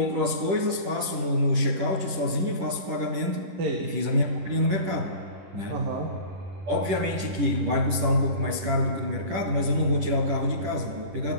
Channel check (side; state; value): left; late; 10 ms